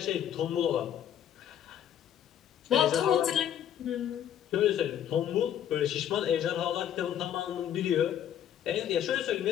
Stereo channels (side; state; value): right; quieter; 10.1 dB